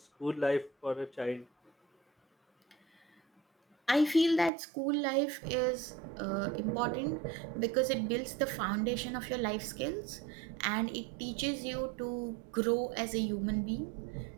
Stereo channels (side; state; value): left; drops out; at 4.5 s